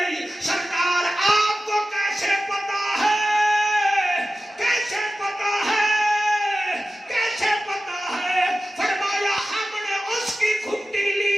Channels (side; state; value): both; normal; correlation 0.95